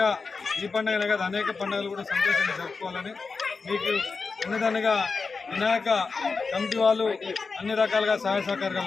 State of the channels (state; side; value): quieter; right; 4.6 dB